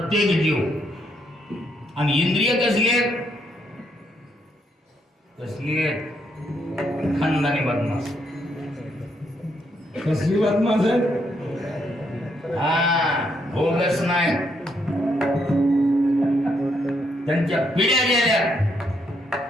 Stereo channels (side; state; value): both; normal; correlation 0.75